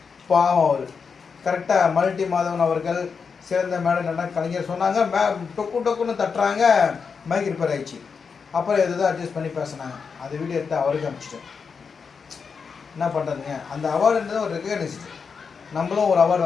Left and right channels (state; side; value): quieter; right; 5.7 dB